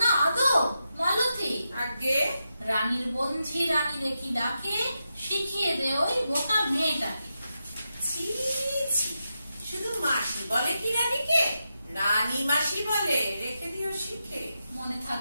না আদৌ মালতী? আগে রানীর বঞ্ঝি রানী দেখি ডাকে, শিখিয়ে দে ওই বোকা মেয়েটাকে। ছি ছি, শুধু মাসি বলে কি রানীকে? রানী মাসি বলে, রেখে দিও শিখে। মনে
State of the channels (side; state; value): both; inverted; correlation -0.87